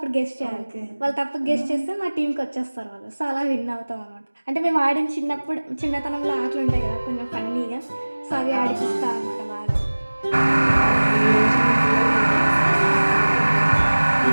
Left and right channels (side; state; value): both; inverted; correlation -1.00